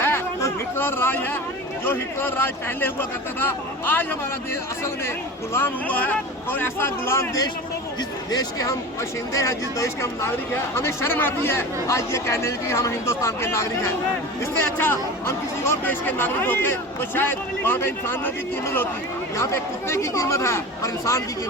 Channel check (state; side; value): normal; both; correlation 0.32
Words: तो हिटलर राज है, जो हिटलर राज पहले हुआ करता था। आज हमारा देश असल में गुलाम हुआ है, और ऐसा गुलाम देश, जिस देश के हम बाशिंदे हैं, जिस देश के हम नागरिक हैं, हमें शर्म आती है आज ये कहने की हम हिंदुस्तान के नागरिक हैं। इससे अच्छा हम किसी और देश के नागरिक होते तो शायद वहाँ पे इंसानों की कीमत होती। यहाँ पे कुत्ते की कीमत है पर इंसान की